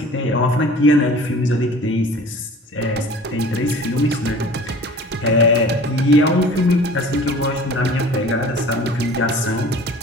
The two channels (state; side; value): normal; both; correlation 0.44